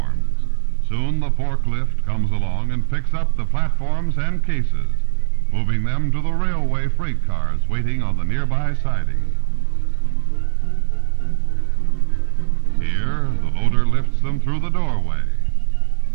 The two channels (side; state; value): left; silent; digital silence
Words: Soon the forklift comes along and picks up the platforms and cases, moving them to the railway freight cars waiting on the nearby siding. Here, the loader lifts them through the doorway.